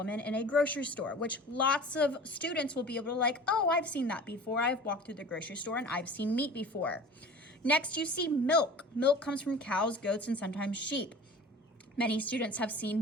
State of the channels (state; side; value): normal; both; correlation 0.40